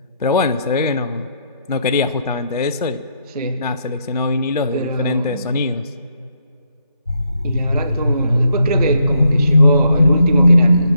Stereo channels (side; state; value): both; inverted; correlation -0.76